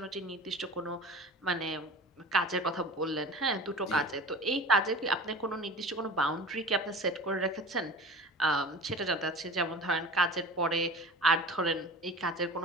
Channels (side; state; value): both; normal; correlation 0.38